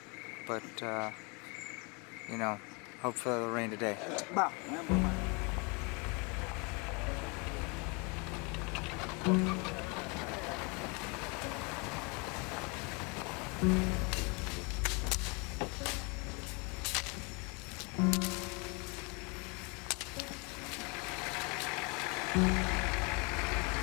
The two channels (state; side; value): quieter; right; 31.0 dB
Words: but you know, hopefully it'll rain today.